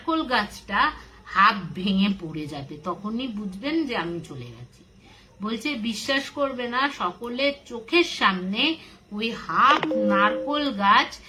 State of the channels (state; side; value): identical; both; correlation 1.00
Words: গাছটা হাফ ভেঙে পড়ে যাবে, তখনই বুঝবেন যে আমি চলে গেছি। বলছে বিশ্বাস করবে না, সকলের চোখের সামনে ওই হাফ নারকোল গাছ